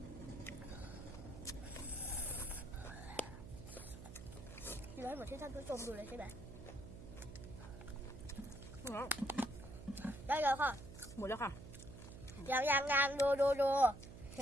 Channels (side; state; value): right; noise; hum, 13 dB below the sound